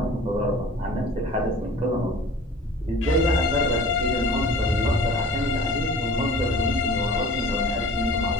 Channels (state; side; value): normal; both; correlation 0.44